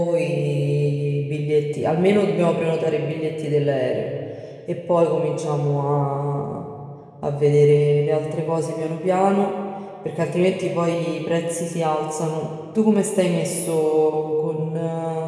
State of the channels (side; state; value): both; identical; correlation 1.00